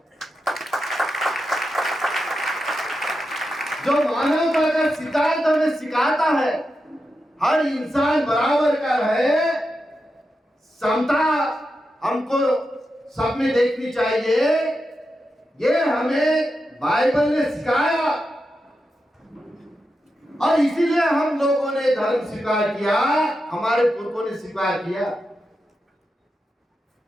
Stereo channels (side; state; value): both; normal; correlation 0.88